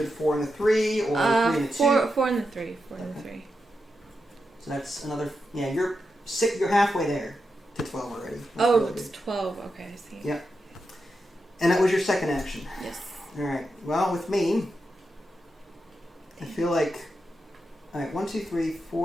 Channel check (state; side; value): normal; both; correlation 0.87